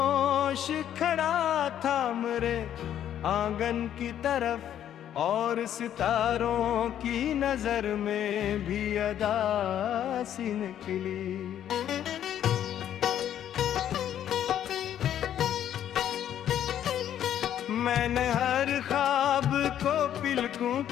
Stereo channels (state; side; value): quieter; right; 10.5 dB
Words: खड़ा था मेरे आंगन की तरफ, और सितारों की नजर में भी अदा सी निकली। मैंने हर ख्वाब को पिलकों